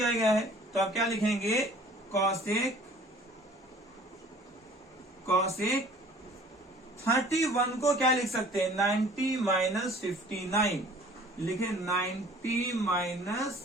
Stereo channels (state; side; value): normal; both; correlation 0.51